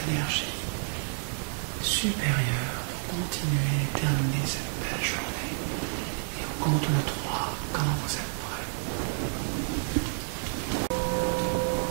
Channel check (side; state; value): left; silent; 58 dB below the other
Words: supérieur pour continuer et terminer cette belle journée. Et au compte de 3, quand vous êtes prêts,